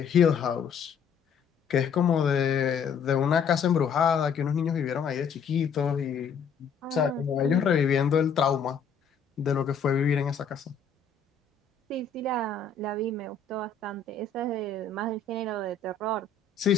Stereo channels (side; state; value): right; quieter; 5.8 dB